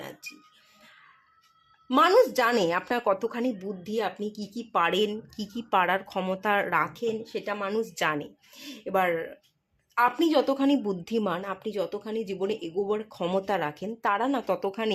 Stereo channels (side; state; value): both; identical; correlation 1.00